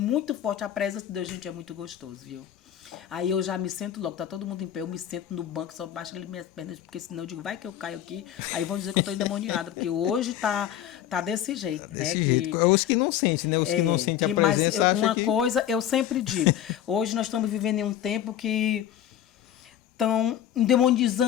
forte, a presença de Deus, gente, é muito gostoso, viu? Aí eu já me sento logo, tá todo mundo em pé, eu me sento no banco, só baixo ali minhas pernas, porque senão eu digo, vai que eu caio aqui, aí vão dizer que eu tô endemoniada, porque hoje tá desse jeito, né? Os que não sentem, né? Os que não sentem a presença. Mas uma coisa eu sempre digo, hoje nós estamos vivendo em um tempo que estão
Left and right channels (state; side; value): quieter; right; 10.9 dB